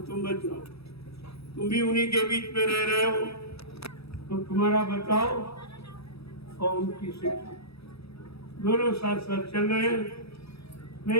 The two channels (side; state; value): right; late; 0.78 ms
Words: बच जाओ। तुम भी उन्हीं के बीच में रह रहे हो, तो तुम्हारा बचाओ और उनकी शिक्षा, दोनों साथ साथ चल रहे हैं।